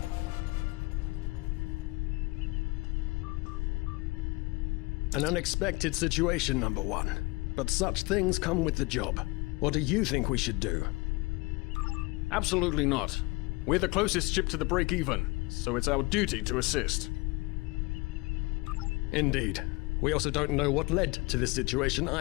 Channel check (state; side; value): quieter; right; 24.5 dB